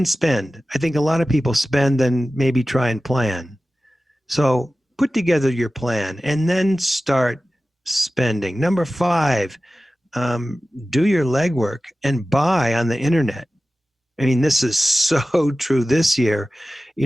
spend. I think a lot of people spend, then maybe try and plan. So put together your plan and then start spending. Number 5, do your legwork and buy on the internet. I mean, this is so true this year.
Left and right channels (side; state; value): both; normal; correlation 0.95